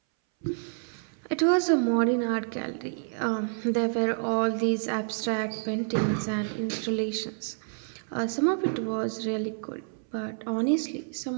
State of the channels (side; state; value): left; silent; 59 dB below the other